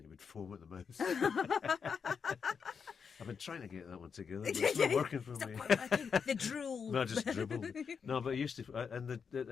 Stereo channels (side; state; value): right; quieter; 6.2 dB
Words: he would foam at the mouth. I've been trying to get that one together, but it's not working for me. The drool. No, just dribble. No, but I used to, and